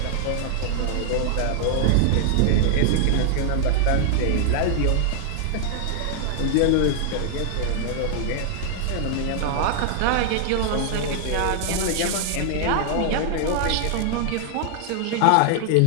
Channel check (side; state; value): both; different; correlation -0.01